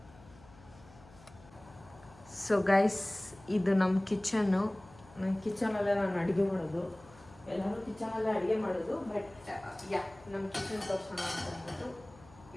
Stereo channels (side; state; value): left; noise; hum, 23 dB below the sound